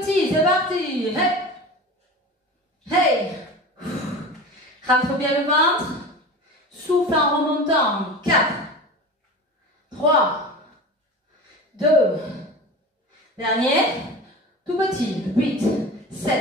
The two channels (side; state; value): both; normal; correlation 0.33